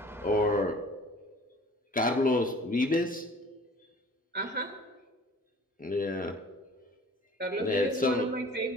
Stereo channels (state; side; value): normal; both; correlation 0.48